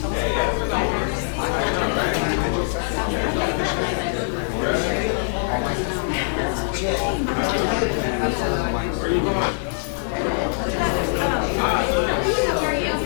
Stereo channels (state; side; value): silent; right; digital silence